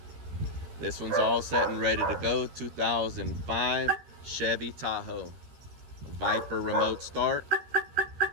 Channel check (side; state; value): left; late; 13 ms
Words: This one's all set and ready to go. 2005 Chevy Tahoe. Viper remote start.